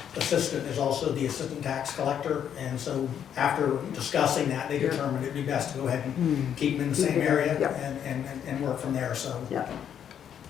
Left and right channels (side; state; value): right; quieter; 9.0 dB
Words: assistant is also the assistant tax collector, and so after discussing that, they Yeah. determined it'd be best to go ahead and keep them in the same area Yeah. and work from there, so. Yeah.